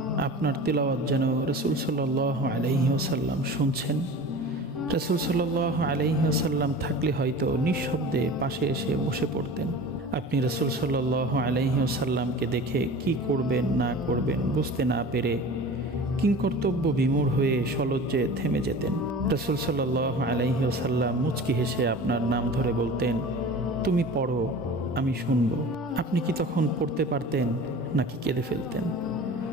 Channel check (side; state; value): both; normal; correlation 0.37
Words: আপনার তেলাওয়াত যেন রাসূল সাল্লাল্লাহু আলাইহি ওয়াসাল্লাম শুনছেন। রাসূল সাল্লাল্লাহু আলাইহি ওয়াসাল্লাম থাকলে হয়তো নিঃশব্দে পাশে এসে বসে পড়তেন। আপনি রাসূল সাল্লাল্লাহু আলাইহি ওয়াসাল্লামকে দেখে কি করবেন না করবেন বুঝতে না পেরে কিংকর্তব্য বিমূঢ় হয়ে সলজ্জে থেমে যেতেন। রাসূল সাল্লাল্লাহু আলাইহি ওয়াসাল্লাম মুচকি হেসে আপনার নাম ধরে বলতেন, তুমি পড়ো, আমি শুনব। আপনি কি তখন পড়তে পারতেন নাকি কেঁদে ফেলতেন?